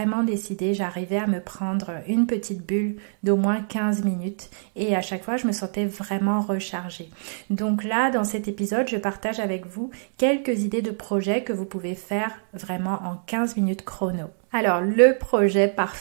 décidé, j'arrivais à me prendre une petite bulle d'au moins 15 minutes et à chaque fois, je me sentais vraiment rechargée. Donc là, dans cet épisode, je partage avec vous quelques idées de projets que vous pouvez faire vraiment en 15 minutes chrono. Alors, le projet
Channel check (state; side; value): silent; left; digital silence